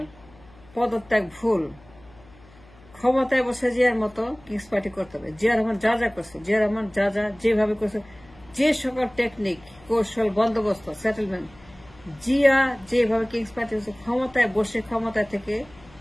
পদত্যাগ ভুল, ক্ষমতায় বসে জিয়ার মতো কিংস পার্টি করতে হবে। জিয়া রহমান যা যা করছে, জিয়া রহমান যা যা যেভাবে করছে, যে সকল টেকনিক, কৌশল, বন্দোবস্ত, সেটেলমেন্ট, জিয়া যেভাবে কিংস পার্টি করছে, ক্ষমতায় বসে ক্ষমতা থেকে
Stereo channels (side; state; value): left; noise; hum, 25 dB below the sound